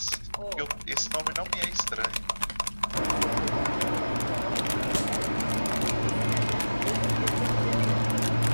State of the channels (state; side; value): inverted; both; correlation -1.00